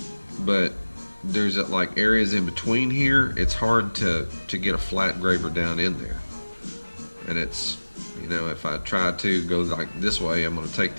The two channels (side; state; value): both; inverted; correlation -1.00